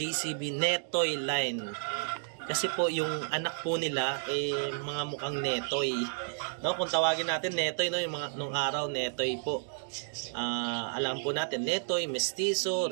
Netoy line? Kasi po yung anak po nila mga mukhang Netoy. No, kung tawagin natin Netoy, no, yung mga nung araw Netoy po. Alam po natin Netoy, Mestizo,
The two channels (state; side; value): silent; left; digital silence